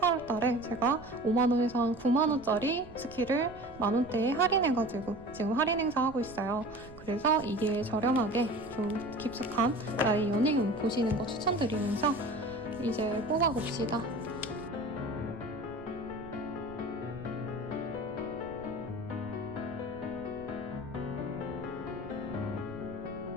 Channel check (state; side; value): noise; right; rumble, 18 dB below the sound